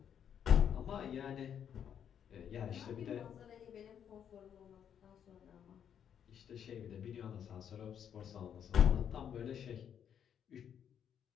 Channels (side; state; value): right; quieter; 8.7 dB